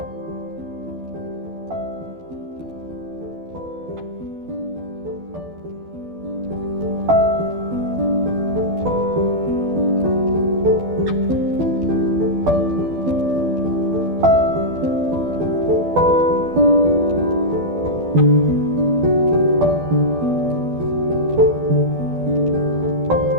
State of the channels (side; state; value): left; late; 12 ms